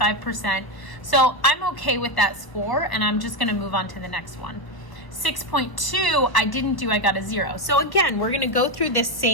So I'm okay with that score, and I'm just going to move on to the next one. 6.2, I didn't do, I got a 0. So again, we're going to go through this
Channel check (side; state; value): right; late; 1.0 ms